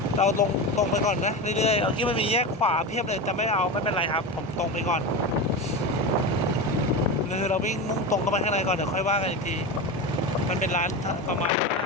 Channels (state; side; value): normal; both; correlation 0.22